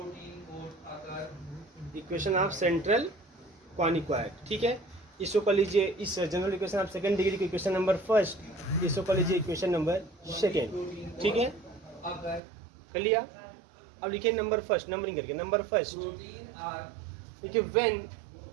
equation of central quadric, ठीक है। इसको कर लीजिए, इस general equation of second degree की इक्वेशन नंबर फर्स्ट, इसको कर लीजिए इक्वेशन नंबर सेकंड, ठीक है, कर लिया। अब लिखिए नंबर फर्स्ट, नंबरिंग करके नंबर फर्स्ट, देखिए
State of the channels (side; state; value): left; drops out; at 12.4 s